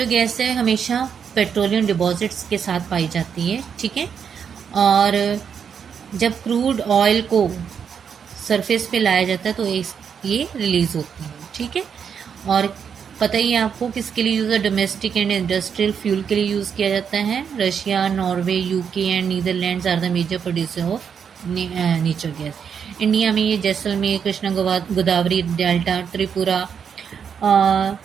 गैस है हमेशा पेट्रोलियम डिपॉजिट्स के साथ पाई जाती है, ठीक है, और जब क्रूड ऑयल को सरफेस पे लाया जाता है तो ये रिलीज होती है, ठीक है। और पता ही है आपको किसके लिए यूज़ है, डोमेस्टिक एंड इंडस्ट्रियल फ्यूल के लिए यूज़ किया जाता है। Russia, Norway, UK and Netherlands are the major producer of natural gas. India में ये जैसलमेर, कृष्णा गोदावरी डेल्टा, त्रिपुरा,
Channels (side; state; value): left; quieter; 7.2 dB